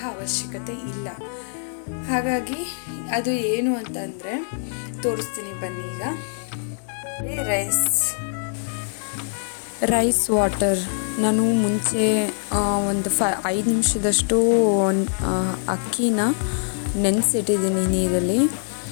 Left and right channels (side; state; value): right; silent; digital silence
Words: ಅವಶ್ಯಕತೆ ಇಲ್ಲ. ಹಾಗಾಗಿ ಅದು ಏನು ಅಂತಂದರೆ ತೋರಿಸ್ತೀನಿ ಬನ್ನಿ. ಈಗ ರೈಸ್ ವಾಟರ್ ನಾನು ಮುಂಚೆ ಒಂದು 5 ನಿಮಿಷದಷ್ಟು ಅಕ್ಕಿನ ನೆನೆಸಿಟ್ಟಿದ್ದೀನಿ ನೀರಲ್ಲಿ.